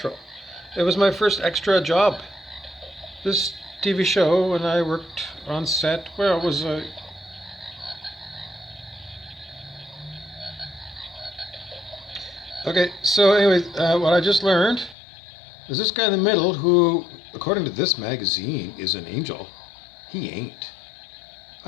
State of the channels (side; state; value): right; drops out; at 15.0 s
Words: It was my first extra job. This TV show, and I worked on set. Well, it was a. Okay, so anyway, what I just learned is this guy in the middle, who, according to this magazine, is an angel. He ain't.